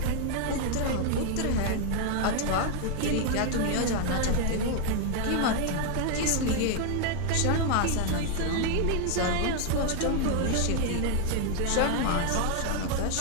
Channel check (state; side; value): different; both; correlation 0.00